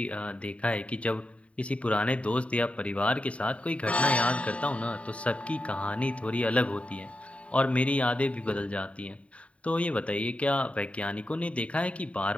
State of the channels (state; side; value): late; right; 0.064 ms